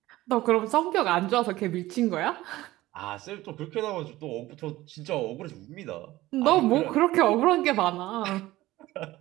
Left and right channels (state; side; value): quieter; left; 17.1 dB